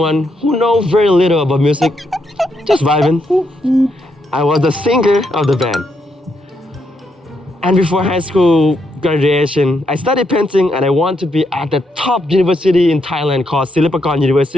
who knows very little about music, just vibing. I was the singer of the band. And before high school graduation, I studied painting and I want to be at the top university in Thailand called Silpakorn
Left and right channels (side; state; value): both; normal; correlation 0.79